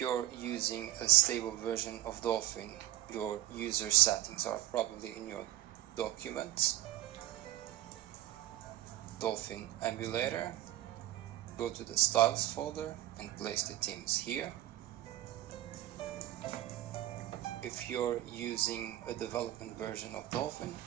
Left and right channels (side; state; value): left; quieter; 14.6 dB